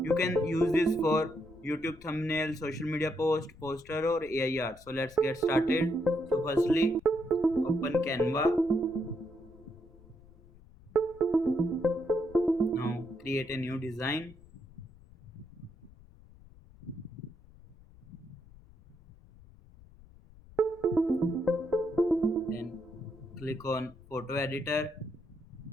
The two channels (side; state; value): left; noise; rumble, 23 dB below the sound